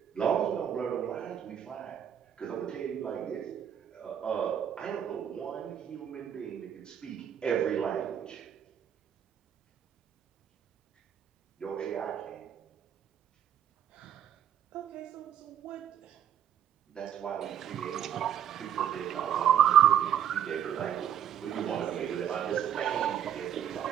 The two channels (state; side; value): quieter; left; 9.6 dB